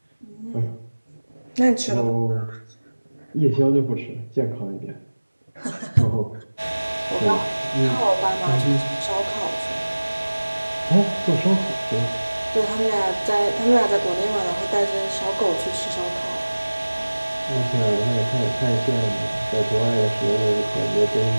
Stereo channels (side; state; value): both; inverted; correlation -1.00